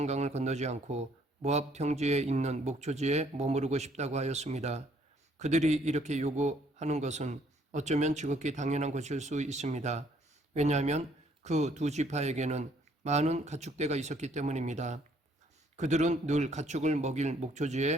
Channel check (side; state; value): both; normal; correlation 0.65